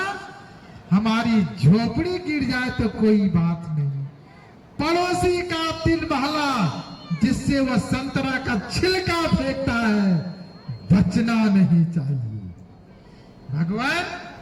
हमारी झोपड़ी गिर जाए तो कोई बात नहीं, पड़ोसी का 3 महला जिससे वह संतरा का छिलका फेंकता है, बचना नहीं चाहिए। भगवान,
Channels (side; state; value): both; identical; correlation 1.00